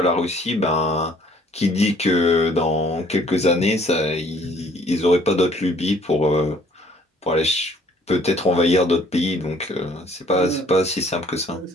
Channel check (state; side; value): normal; both; correlation 0.59